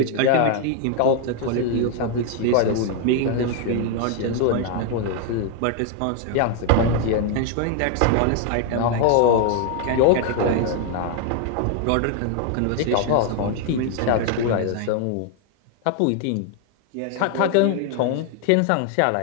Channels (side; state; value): both; different; correlation 0.00